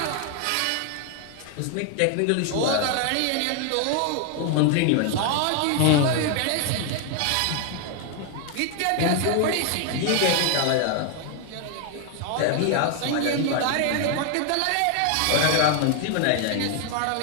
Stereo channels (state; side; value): different; both; correlation 0.00